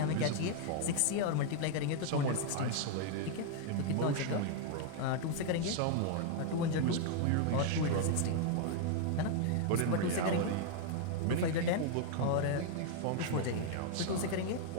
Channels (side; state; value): both; different; correlation 0.00